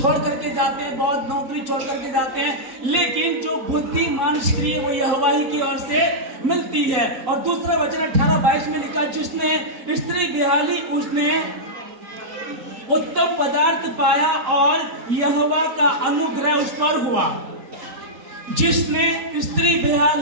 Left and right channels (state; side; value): late; left; 3.9 ms